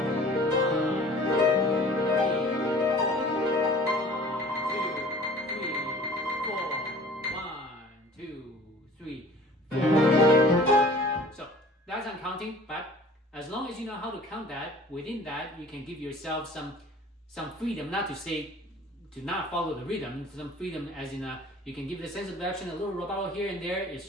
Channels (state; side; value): normal; both; correlation 0.47